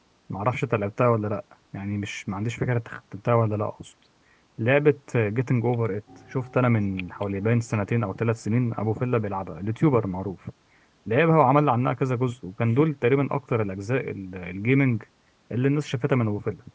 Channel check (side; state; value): both; identical; correlation 1.00